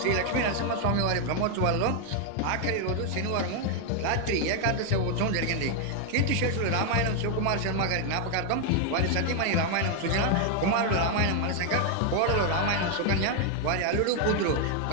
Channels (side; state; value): both; different; correlation 0.00